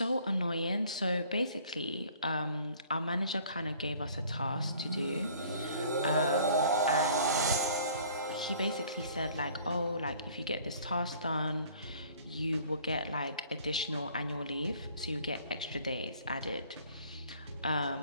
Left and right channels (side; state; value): both; inverted; correlation -0.54